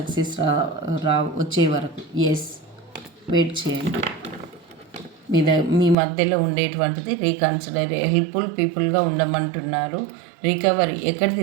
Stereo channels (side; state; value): left; drops out; at 6.0 s